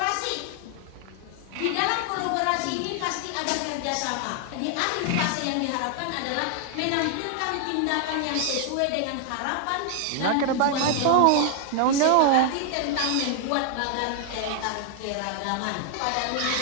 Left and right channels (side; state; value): both; different; correlation 0.00